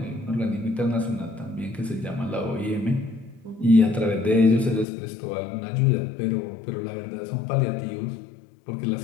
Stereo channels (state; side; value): drops out; right; at 4.9 s